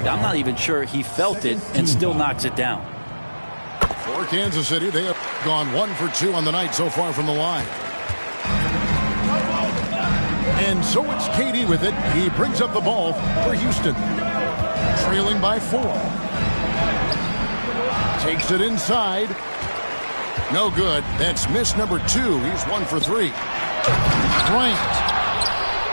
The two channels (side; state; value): both; inverted; correlation -1.00